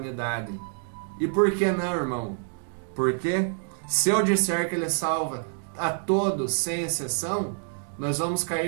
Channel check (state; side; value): silent; left; digital silence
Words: E por que não, irmão? Porque se eu disser que ele salva a todos sem exceção, nós vamos